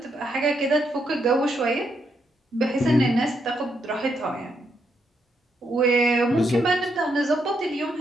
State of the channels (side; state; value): both; normal; correlation 0.78